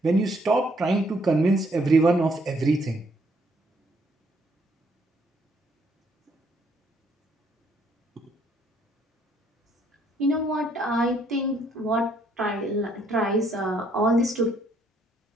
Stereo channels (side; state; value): both; normal; correlation 0.68